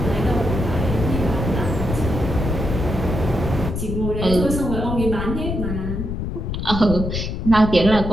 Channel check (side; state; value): left; noise; rumble, 3 dB below the sound